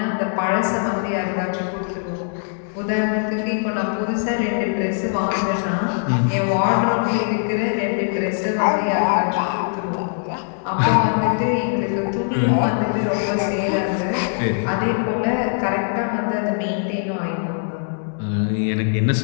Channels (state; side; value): silent; right; 65 dB below the other